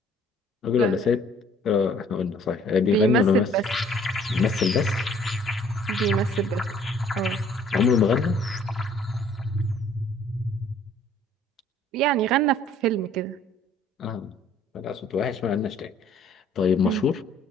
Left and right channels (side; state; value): both; normal; correlation 0.57